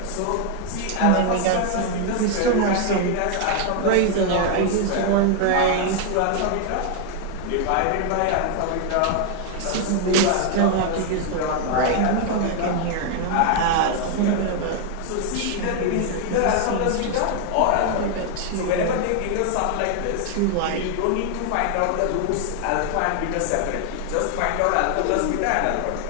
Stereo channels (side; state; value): both; different; correlation 0.00